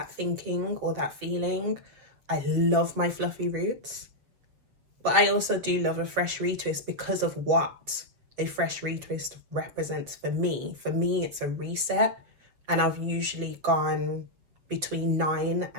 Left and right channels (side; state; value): left; late; 7.3 ms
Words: thinking or that feeling. I love my fluffy roots, but I also do love a fresh retwist because of what a fresh retwist represents for me. For me, it's a reset, and I've usually gone between 9